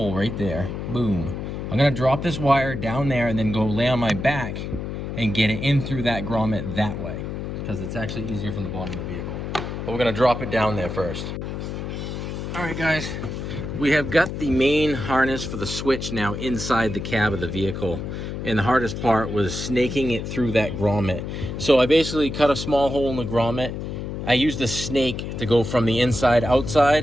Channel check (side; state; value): left; noise; hum, 5 dB below the sound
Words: right there. Boom. I'm going to drop this wire down there and then go lay on my back and get it in through that grommet that way, because it's actually easier from the bottom of the vehicle. But we're going to drop it down there first. All right, guys. We have got the main harness for the switch now inside the cab of the vehicle. And the hardest part was snaking it through that grommet. So I basically cut a small hole in the grommet. I used a snake to go from the inside